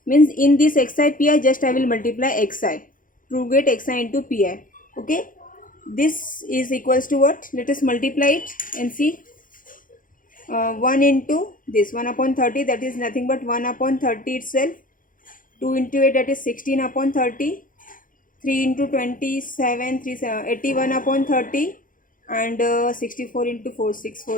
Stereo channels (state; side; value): late; right; 0.39 ms